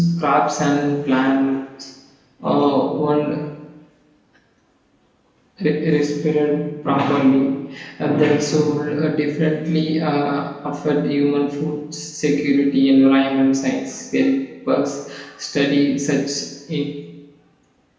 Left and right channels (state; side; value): identical; both; correlation 1.00